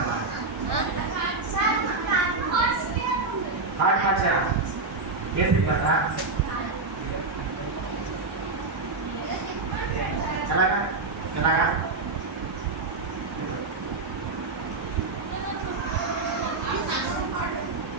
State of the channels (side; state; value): left; quieter; 3.7 dB